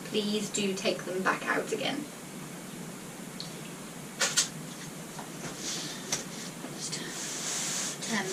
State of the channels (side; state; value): both; identical; correlation 1.00